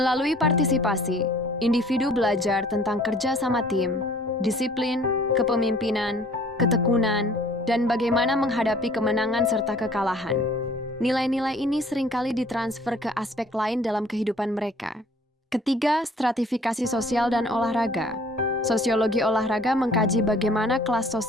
partisipasi, individu belajar tentang kerja sama tim, disiplin, kepemimpinan, ketekunan, dan bagaimana menghadapi kemenangan serta kekalahan. Nilai-nilai ini seringkali ditransfer ke aspek lain dalam kehidupan mereka. Ketiga, stratifikasi sosial dan olahraga. Sosiologi olahraga mengkaji bagaimana kelas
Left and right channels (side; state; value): both; normal; correlation 0.54